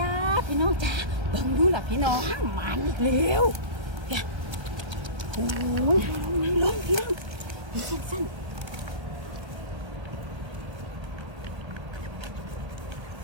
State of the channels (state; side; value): late; left; 1.3 ms